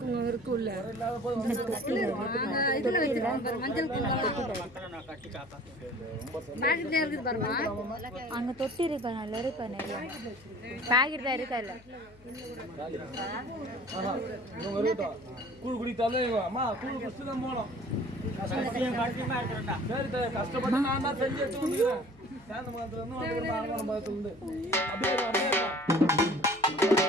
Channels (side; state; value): left; noise; hum, 25 dB below the sound